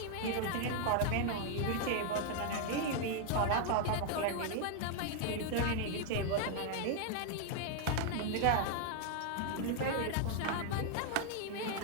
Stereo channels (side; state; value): both; different; correlation 0.00